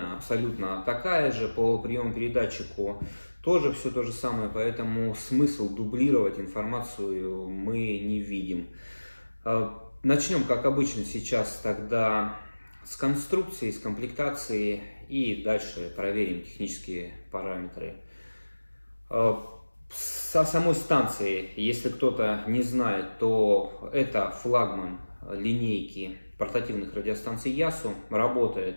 абсолютно такая же, по приему-передатчику тоже все то же самое, поэтому смысл дублировать информацию мы не видим. Начнем, как обычно, сейчас тогда с конструкции, с комплектации и дальше проверим технические параметры. Со самой станции, если кто-то не знает, то это флагман линейки портативных радиостанций Yasu.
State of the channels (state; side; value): inverted; both; correlation -1.00